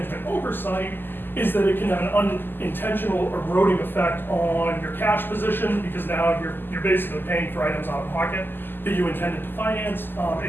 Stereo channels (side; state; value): right; late; 0.094 ms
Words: oversight is that it can have an unintentional eroding effect on your cash position, because now you're basically paying for items out of pocket that you intended to finance.